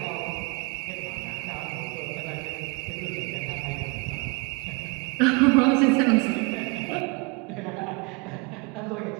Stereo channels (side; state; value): left; quieter; 28.2 dB